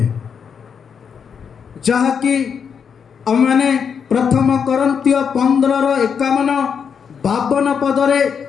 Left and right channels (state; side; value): quieter; right; 6.9 dB